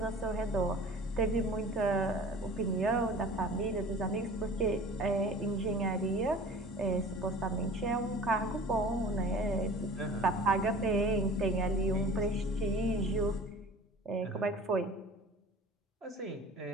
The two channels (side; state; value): both; normal; correlation 0.44